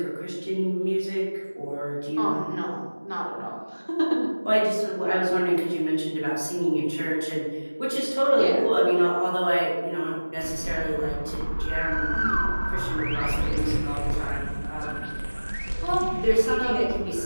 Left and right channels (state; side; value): inverted; both; correlation -1.00